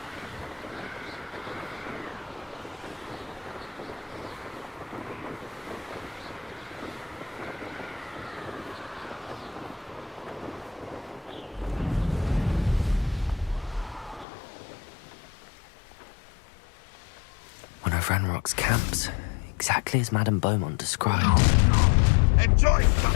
One of Ranrock's camps, exactly as Madame Beaumont described. Enjoy some.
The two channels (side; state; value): right; drops out; at 14.2 s